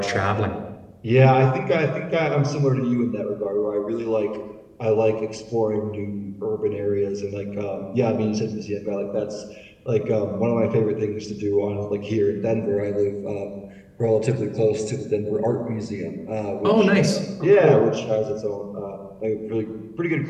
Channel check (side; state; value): both; identical; correlation 1.00